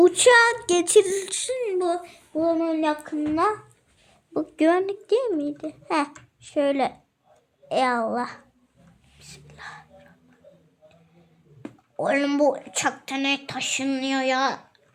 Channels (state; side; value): identical; both; correlation 1.00